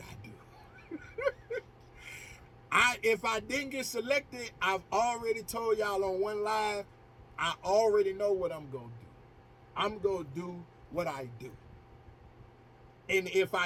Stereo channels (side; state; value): both; identical; correlation 1.00